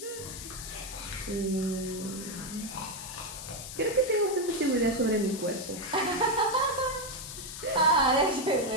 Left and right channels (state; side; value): noise; left; hiss, 10 dB below the sound